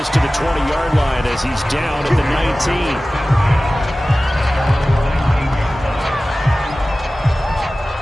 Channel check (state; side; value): normal; both; correlation 0.97